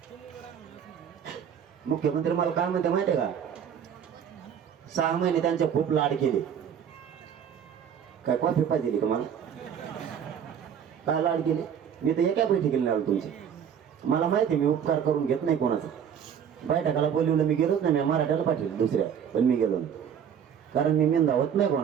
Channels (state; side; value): quieter; left; 8.3 dB